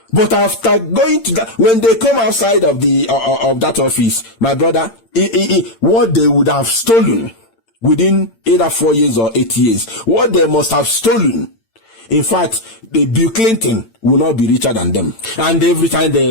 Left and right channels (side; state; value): right; late; 8.8 ms